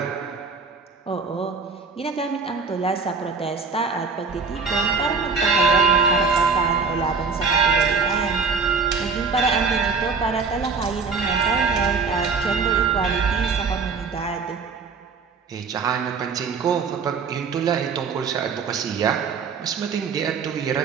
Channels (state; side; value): quieter; left; 5.0 dB